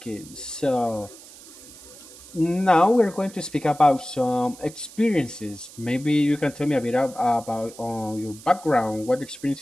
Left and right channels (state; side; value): noise; right; hiss, 19 dB below the sound